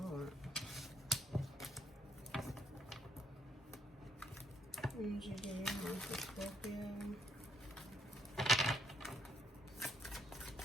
Energy do you have for Scorpio?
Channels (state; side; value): normal; both; correlation 0.72